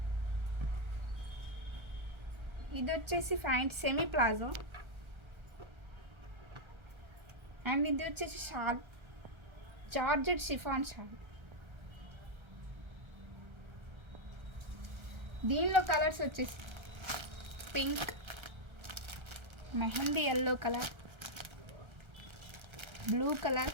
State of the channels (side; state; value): left; late; 1.3 ms